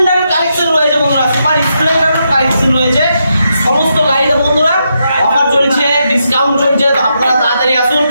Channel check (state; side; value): inverted; both; correlation -0.82